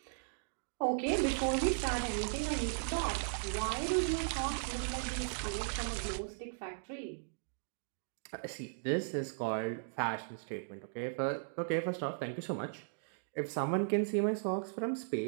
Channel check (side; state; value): left; silent; digital silence